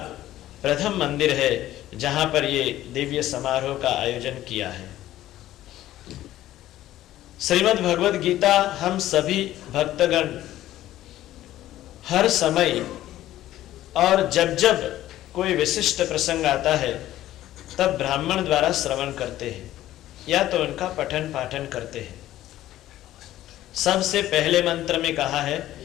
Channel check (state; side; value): quieter; right; 14.0 dB